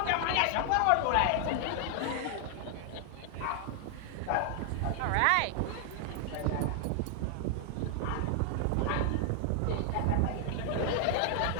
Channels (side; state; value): both; different; correlation 0.00